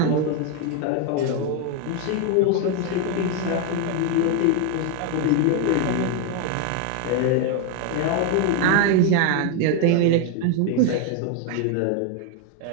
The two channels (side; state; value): both; different; correlation 0.01